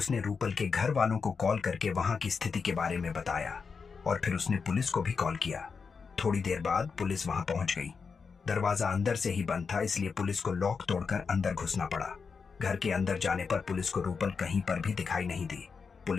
रूपल के घर वालों को कॉल करके वहां की स्थिति के बारे में बताया और फिर उसने पुलिस को भी कॉल किया। थोड़ी देर बाद पुलिस वहां पहुंच गई। दरवाजा अंदर से ही बंद था, इसलिए पुलिस को लॉक तोड़कर अंदर घुसना पड़ा। घर के अंदर जाने पर पुलिस को रूपल कहीं पर भी दिखाई नहीं दी।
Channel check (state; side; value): quieter; right; 5.4 dB